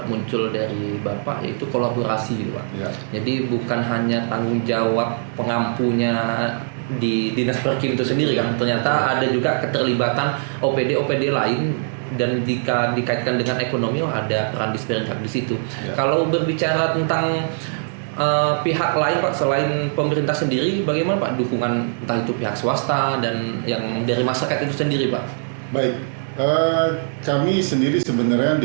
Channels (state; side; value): silent; left; digital silence